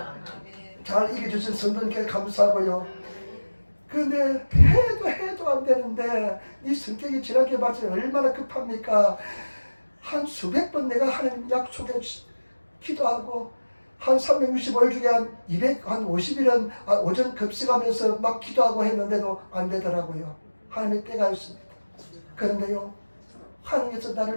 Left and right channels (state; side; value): inverted; both; correlation -1.00